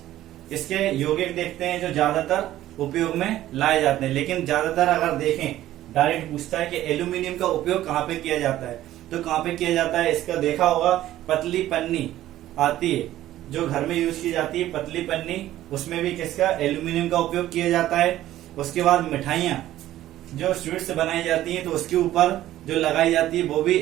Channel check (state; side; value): quieter; left; 13.9 dB